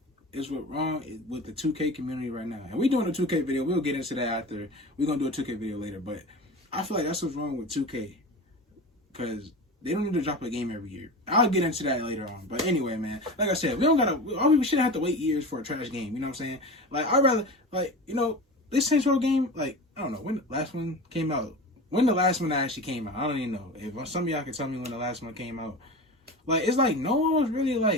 is what's wrong with the 2K community right now. And we doing a 2K video. We'll get into that after. We're going to do a 2K video later. But I feel like that's what's wrong with 2K. Because they don't need to drop a game every year. I'll get into that later on. But anyway, man, like I said, we shouldn't have to wait years for a trash game. You know what I'm saying? Like, I'd rather, like, you know, this Saints Row game, like, I don't know when the last one came out. When the last one actually came out, I don't even know. If some of y'all can tell me when the last one came out. Like, it's like no one was really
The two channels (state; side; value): normal; both; correlation 0.31